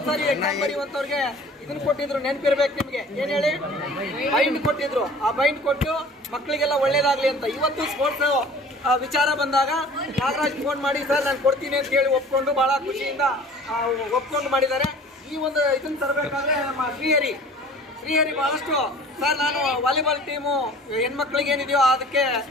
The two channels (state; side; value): normal; both; correlation 0.46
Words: ಸಾರಿ ಎಕ್ಸಾಮ್ ಬರೆಯುವಂತವ್ರಿಗೆ ಇದನ್ನ ಕೊಟ್ಟಿದ್ರು, ನೆನಪಿರ್ಬೇಕು ನಿಮ್ಗೆ. ಏನ್ ಹೇಳಿ, ಬೈಂಡ್ ಕೊಟ್ಟಿದ್ರು. ಆ ಬೈಂಡ್ ಕೊಟ್ಟು ಮಕ್ಕಳಿಗೆಲ್ಲ ಒಳ್ಳೇದಾಗ್ಲಿ ಅಂತ. ಇವತ್ತು ಸ್ಪೋರ್ಟ್ಸ್ ವಿಚಾರ ಬಂದಾಗ ನಾಗರಾಜ್ ಫೋನ್ ಮಾಡಿ ಸರ್ ನಾನು ಕೊಡ್ತೀನಿ ಅಂತ ಹೇಳಿ ಒಪ್ಕೊಂಡು ಬಹಳ ಖುಷಿಯಿಂದ ಒಪ್ಕೊಂಡು ಮಾಡಿದ್ದಾರೆ. ಈ ಒಂದು ಇದನ್ನ ತರಬೇಕಾದ್ರೆ ನಮ್ಮ ಶ್ರೀಹರಿ ಬಹಳಷ್ಟು ಸರ್ ನಾನು ವಾಲಿಬಾಲ್ ಟೀಮು ಹೆಣ್ಮಕ್ಳಿಗೆ ಏನಿದೆಯೋ ಅದಕ್ಕೆ